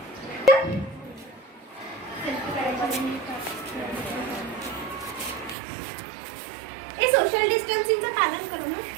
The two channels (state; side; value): drops out; left; at 5.6 s